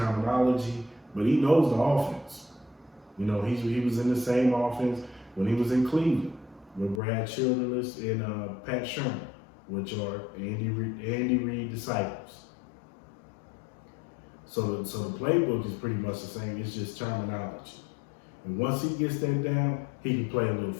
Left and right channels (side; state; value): right; drops out; at 7.0 s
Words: but he knows the offense. You know, he was in the same offense when he was in Cleveland with Brad Childress and Pat Shermer, which are Andy Reid disciples. So the playbook is pretty much the same. It's just terminology. And once he gets that down, he can play a little